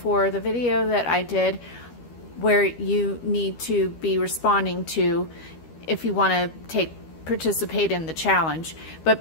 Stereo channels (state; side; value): late; right; 12 ms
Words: the video that I did where you need to be responding to if you want to participate in the challenge. But